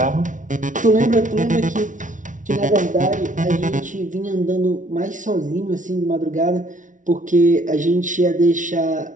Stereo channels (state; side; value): late; left; 0.37 ms